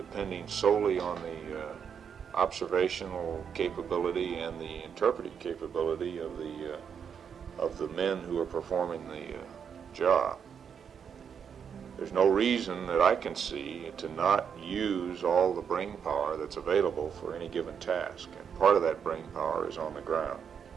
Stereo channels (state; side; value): quieter; left; 7.3 dB